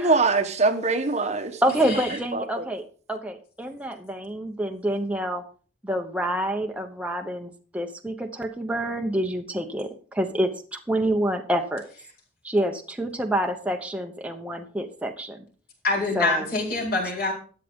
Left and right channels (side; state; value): both; normal; correlation 0.45